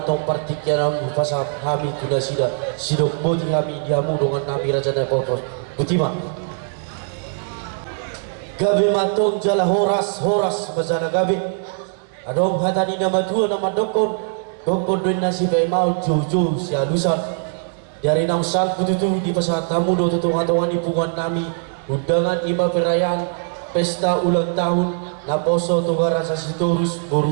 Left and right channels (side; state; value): left; silent; 63 dB below the other